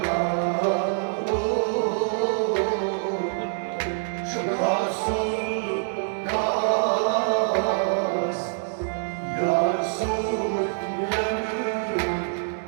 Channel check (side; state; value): left; silent; 62 dB below the other